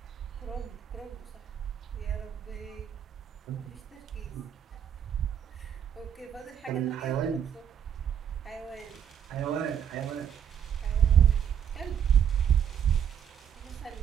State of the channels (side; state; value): left; quieter; 8.6 dB